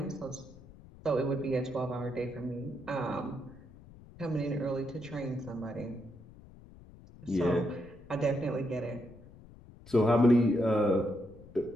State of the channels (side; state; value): left; noise; rumble, 20 dB below the sound